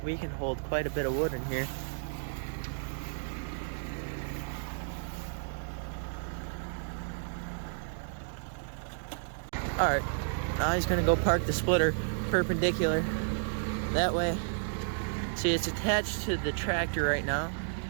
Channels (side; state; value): left; silent; digital silence